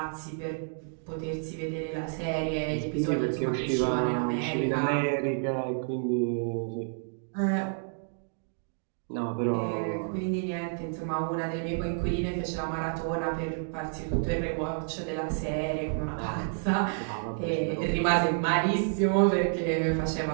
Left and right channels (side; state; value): left; silent; digital silence